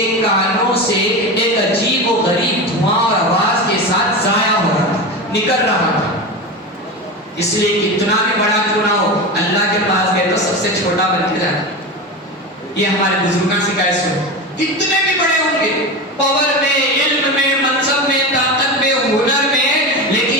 کانوں سے ایک عجیب و غریب دھواں اور آواز کے ساتھ ضائع ہو رہا تھا، نکل رہا تھا. اس لیے کتنا بھی بڑا کیوں نہ ہو اللہ کے پاس گئے تو سب سے چھوٹا بن کے جانا. یہ ہمارے بزرگوں سے کیسے ہو، کتنے بھی بڑے ہوں گے پاور میں، علم میں، منصب میں، طاقت میں، ہنر میں،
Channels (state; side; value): normal; both; correlation 0.23